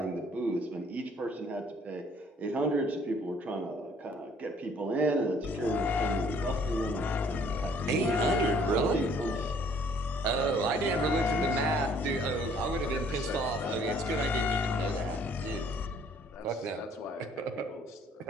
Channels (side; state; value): both; normal; correlation 0.59